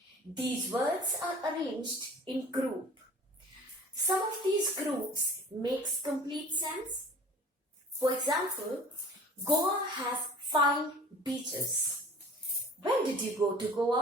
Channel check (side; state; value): both; normal; correlation 0.45